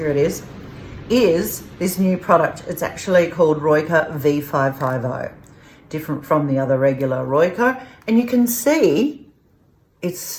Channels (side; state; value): both; identical; correlation 1.00